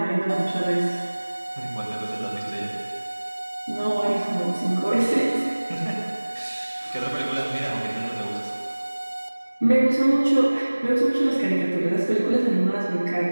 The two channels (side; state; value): both; inverted; correlation -1.00